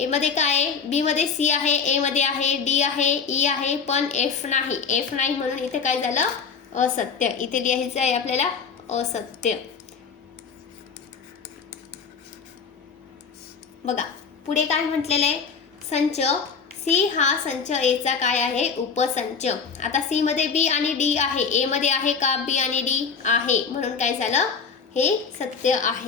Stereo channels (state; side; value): quieter; right; 5.8 dB